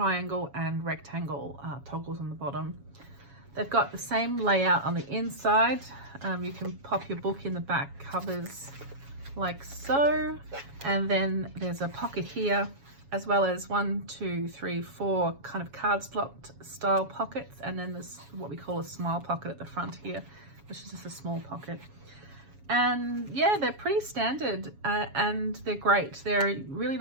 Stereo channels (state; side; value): late; left; 7.2 ms